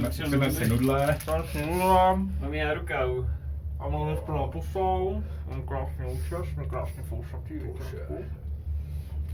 si nudle. Mám já rukavu. A máme plnou pusou. Mám krásný účes, jsme krásně fousatý, víte.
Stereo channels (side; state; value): both; identical; correlation 1.00